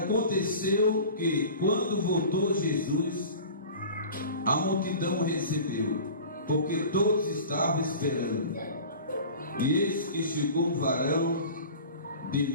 que, quando voltou Jesus, a multidão recebeu, porque todos estavam esperando. E eis que chegou um varão de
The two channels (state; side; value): inverted; both; correlation -0.39